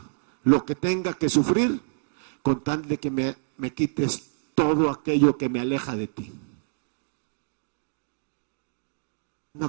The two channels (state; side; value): silent; left; digital silence